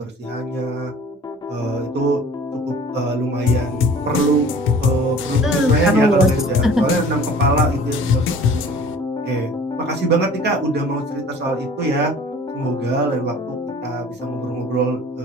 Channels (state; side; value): normal; both; correlation 0.46